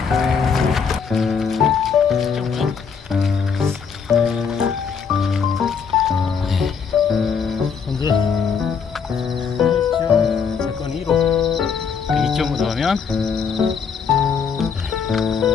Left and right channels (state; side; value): quieter; right; 6.2 dB